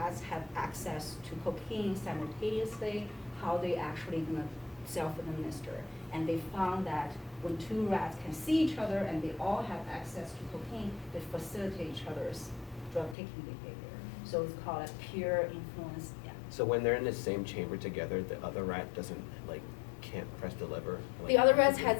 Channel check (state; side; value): drops out; right; at 13.2 s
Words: have access to cocaine simultaneously, how they actually gonna self-administer. And they found that when two rats can see each other and they all have access to cocaine, they facilitate each other's drug-taking behavior. So it's called a peer influence. Yeah. So when they're in the same chamber together, the other rat can't press the lever. The other rat has